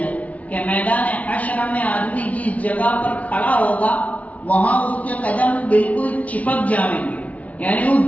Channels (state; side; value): late; right; 0.068 ms